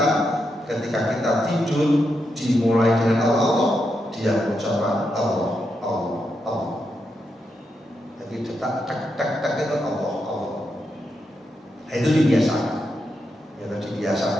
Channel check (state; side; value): normal; both; correlation 0.84